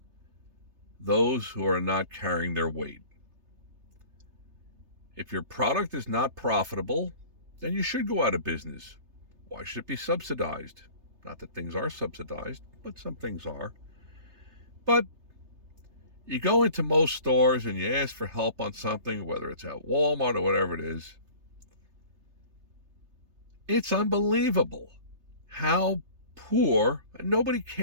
those who are not carrying their weight. If your product is not profitable, then you should go out of business. Why should it be subsidized? Not that things are subsidized, but some things are. But you go into most stores and you ask for help on something, whether it's at Walmart or whatever it is. It's unbelievable how poor, and nobody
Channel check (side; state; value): left; late; 3.3 ms